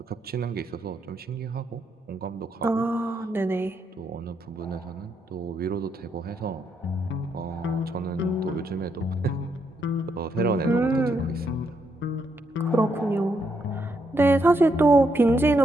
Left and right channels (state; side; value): normal; both; correlation 0.77